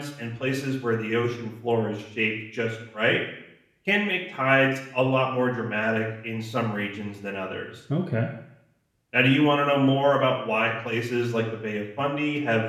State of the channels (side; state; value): both; identical; correlation 1.00